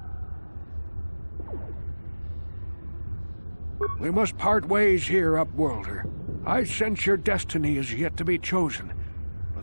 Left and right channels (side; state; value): both; inverted; correlation -1.00